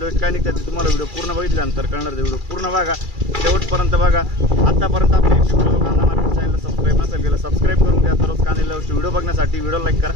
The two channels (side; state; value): left; late; 2.3 ms